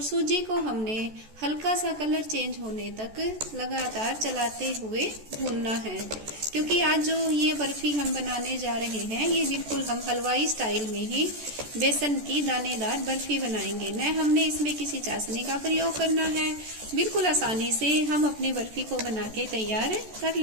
सूजी को हमने हल्का सा कलर चेंज होने तक लगातार चलाते हुए भूनना है, क्योंकि आज जो ये बर्फी हम बनाने जा रहे हैं ये बिल्कुल हम हलवाई स्टाइल में ही बेसन की दानेदार बर्फी बनाएंगे। न हमने इसमें किसी चाशनी का प्रयोग करना है, बिल्कुल आसानी से हम अपनी बर्फी को बना के तैयार कर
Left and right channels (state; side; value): late; left; 14 ms